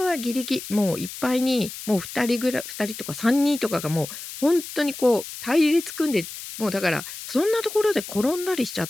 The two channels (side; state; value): left; noise; hiss, 11 dB below the sound